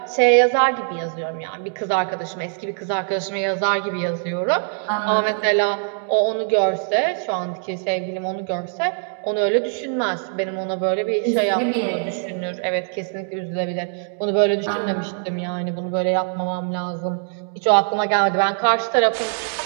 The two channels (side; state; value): left; silent; 60 dB below the other